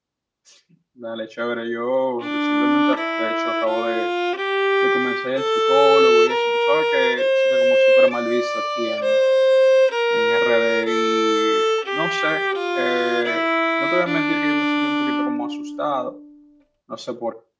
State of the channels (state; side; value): identical; both; correlation 1.00